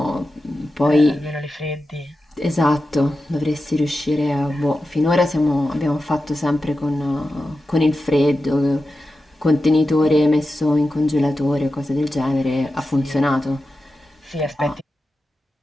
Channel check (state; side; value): normal; both; correlation 0.92